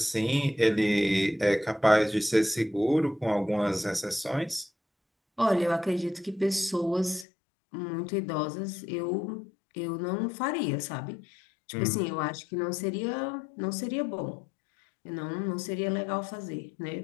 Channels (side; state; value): right; drops out; at 7.2 s